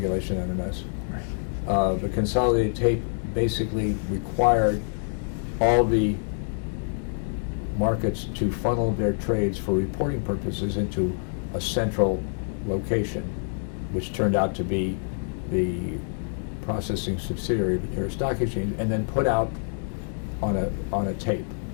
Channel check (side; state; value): right; silent; 61 dB below the other